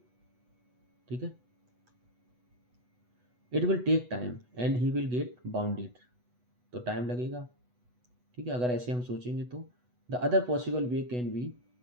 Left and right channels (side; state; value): left; late; 8.1 ms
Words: ठीक है, it will take time and he will get bounded, तो टाइम लगेगा। ठीक है, अगर ऐसे हम सोचेंगे तो the other possible way can be,